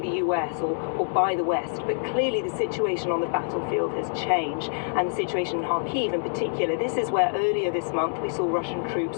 US or by the West. But clearly the situation on the battlefield has changed, and the situation in Kharkiv in particular. This is where earlier this month we saw Russian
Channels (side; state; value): right; silent; digital silence